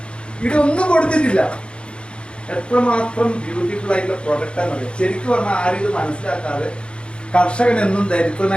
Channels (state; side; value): late; right; 0.056 ms